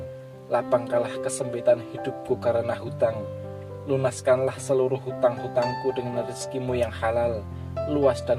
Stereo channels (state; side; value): identical; both; correlation 1.00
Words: lapangkanlah kesempitan hidupku karena hutang. Lunaskanlah seluruh hutang-hutangku dengan rezekimu yang halal, luas dan